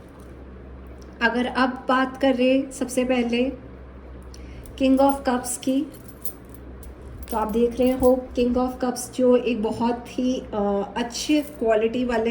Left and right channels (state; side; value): identical; both; correlation 1.00